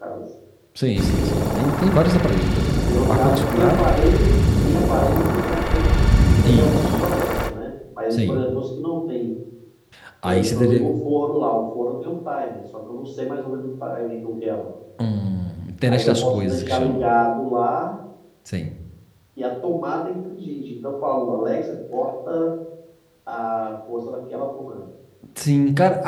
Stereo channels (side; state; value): both; identical; correlation 1.00